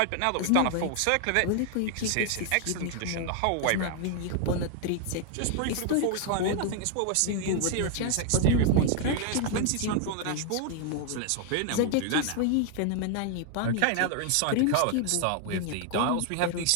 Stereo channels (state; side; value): different; both; correlation 0.00